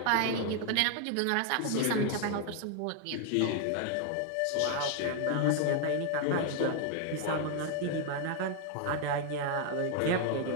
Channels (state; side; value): different; both; correlation 0.00